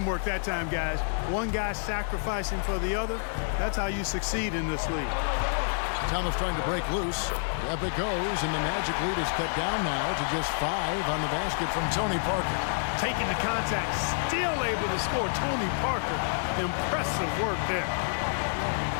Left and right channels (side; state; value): right; silent; digital silence